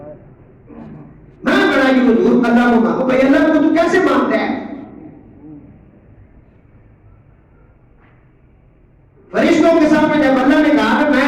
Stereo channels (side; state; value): both; identical; correlation 1.00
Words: میں بڑا ہی حضور اللہ کو مانگو. بھائی اللہ کو تو کیسے مانتا ہے؟ فرشتوں کے سامنے جب اللہ نے کہا کہ